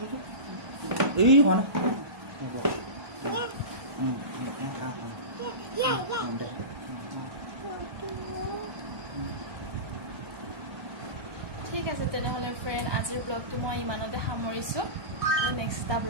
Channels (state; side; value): late; left; 1.2 ms